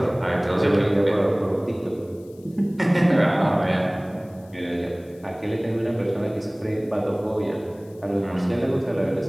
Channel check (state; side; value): noise; left; hiss, 30 dB below the sound